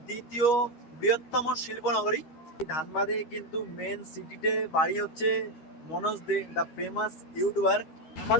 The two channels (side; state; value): right; late; 13 ms